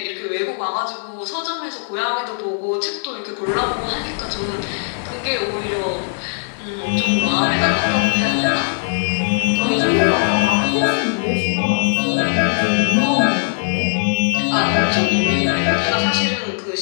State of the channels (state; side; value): silent; right; digital silence